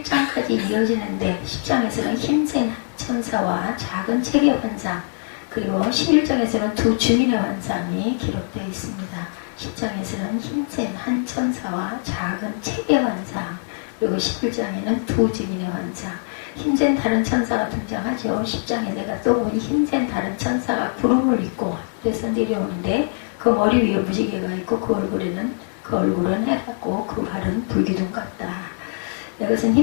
이어지는데 10장에서는 힘센 천사와 작은 체계 환상, 그리고 11장에서는 두 증인의 환상이 기록되어 있습니다. 10장에서는 힘센 한 천사와 작은 체계 환상, 그리고 11장에는 두 증인의 환상. 힘센 다른 천사가 등장하죠. 10장에 내가 또 보니 힘센 다른 천사가 구름을 입고 하늘에서 내려오는데 그 머리 위에 무지개가 있고 그 얼굴은 해같고 그 발은 불기둥 같다. 이것은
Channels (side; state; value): right; silent; digital silence